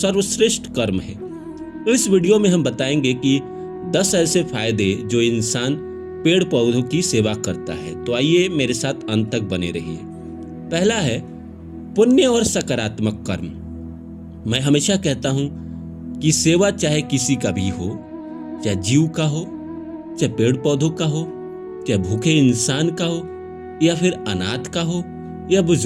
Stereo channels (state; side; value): identical; both; correlation 1.00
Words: कर्म है। इस वीडियो में हम बताएंगे कि 10 ऐसे फायदे जो इंसान पेड़ पौधों की सेवा करता है। तो आइए मेरे साथ अंत तक बने रहिए। पहला है पुण्य और सकारात्मक कर्म। मैं हमेशा कहता हूं कि सेवा चाहे किसी का भी हो, चाहे जीव का हो, चाहे पेड़ पौधों का हो, चाहे भूखे इंसान का हो, या फिर अनाथ का हो, या